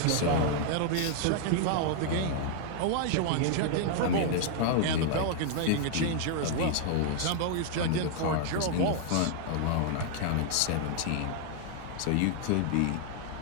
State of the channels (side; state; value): both; different; correlation 0.00